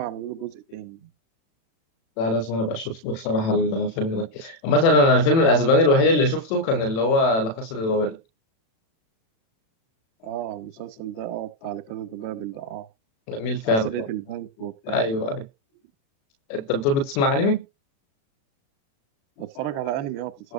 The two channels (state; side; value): late; right; 36 ms